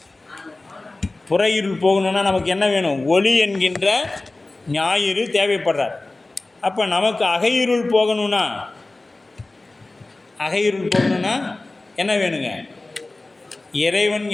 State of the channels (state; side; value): quieter; right; 3.0 dB